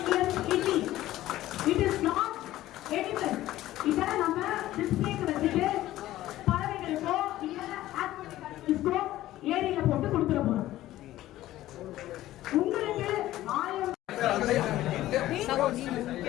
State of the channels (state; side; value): quieter; right; 14.9 dB